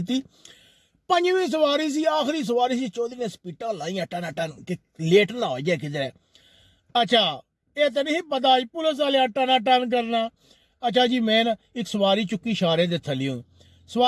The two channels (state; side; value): identical; both; correlation 1.00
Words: 5वीं सवारी सी आखिरी सवारी सी चौधरी ने स्पीटा लाइया टन टन कि लेट ना हो जाए किधर। अच्छा ये तो नहीं पता पुलिस वाले टना टन करना। अच्छा जी मैं ना एक सवारी चुकी इशारे दे थलियों